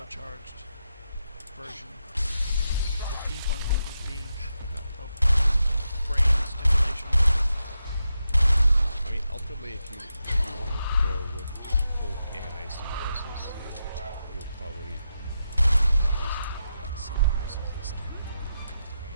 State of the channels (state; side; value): inverted; both; correlation -0.87